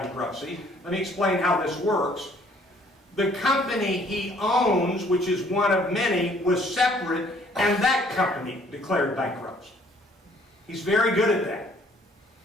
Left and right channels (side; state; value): both; normal; correlation 0.60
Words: Let me explain how this works. The company he owns, which is one of many, was separate, and that company declared bankruptcy. He's very good at that.